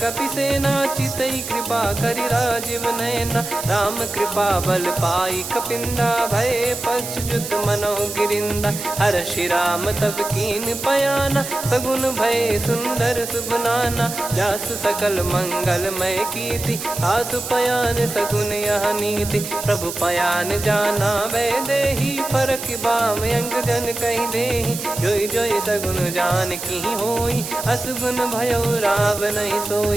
सेना चितई कृपा करि राजीव नयना। राम कृपा बल पाई कपिंदा भय पक्ष जुत मनो गिरिंदा। हर्षि राम तब कीन पयाना सगुन भय सुंदर शुभ नाना। जासु सकल मंगलमय कीर्ति आसु पयान सगुन यह नीति। प्रभु पयान जाना वै देहि फरक बाम अंग जन कहि देहि। जोई जोई सगुन जान की होई असगुन भयो राव नहीं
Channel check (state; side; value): noise; right; hiss, 8 dB below the sound